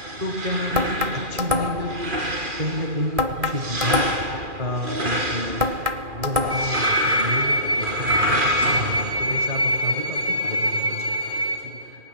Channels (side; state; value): left; late; 2.4 ms